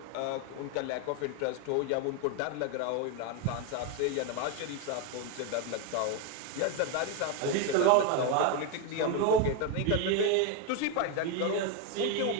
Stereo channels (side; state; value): both; different; correlation 0.02